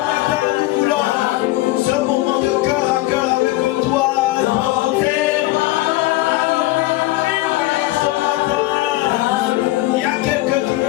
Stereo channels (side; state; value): right; quieter; 18.0 dB